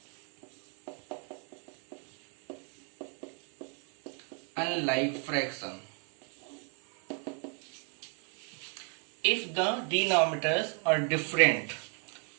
Unlike fraction. If the denominators are different,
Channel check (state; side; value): quieter; left; 38.6 dB